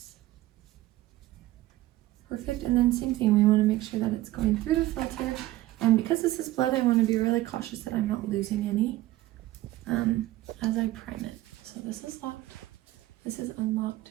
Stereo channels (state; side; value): quieter; left; 16.4 dB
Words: Perfect, and then same thing, we want to make sure that it's going through the filter. And because this is blood, I want to be really cautious that I'm not losing any as I prime it. So this is locked, this is unlocked,